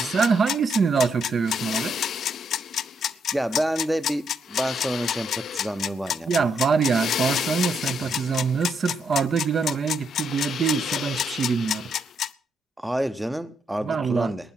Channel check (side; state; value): both; normal; correlation 0.77